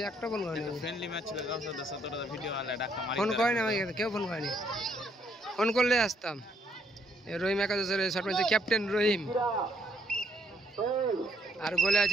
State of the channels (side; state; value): both; normal; correlation 0.70